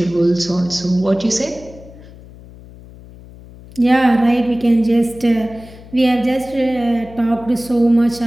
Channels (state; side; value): noise; left; hum, 20 dB below the sound